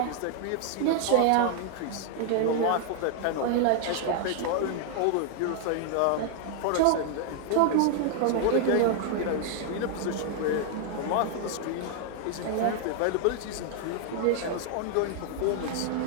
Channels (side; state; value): both; different; correlation 0.00